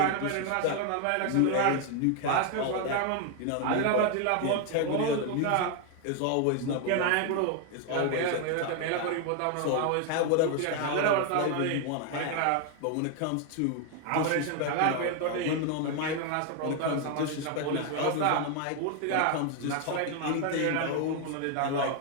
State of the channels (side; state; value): both; different; correlation 0.01